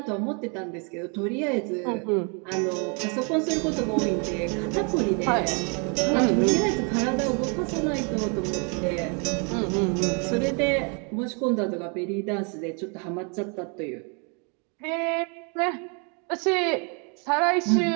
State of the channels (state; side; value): quieter; left; 36.5 dB